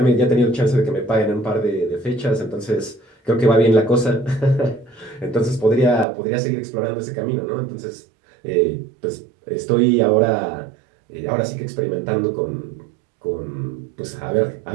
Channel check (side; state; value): left; drops out; at 6.1 s